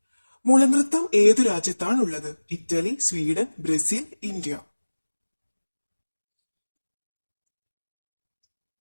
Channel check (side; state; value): both; inverted; correlation -1.00